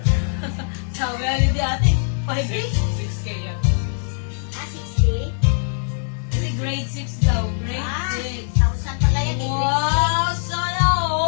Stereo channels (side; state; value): right; silent; 65 dB below the other